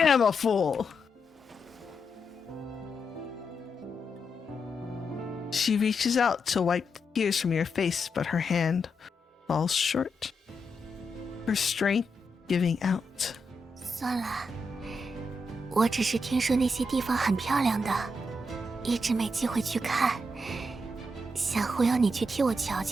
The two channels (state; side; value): normal; both; correlation 0.84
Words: a fool. She reaches out to wipe tears from your face, but her hand falls short. Her strength giving out. 算了，我只是听说那些地方很漂亮的，一直没机会去看，想忽悠你去替我瞧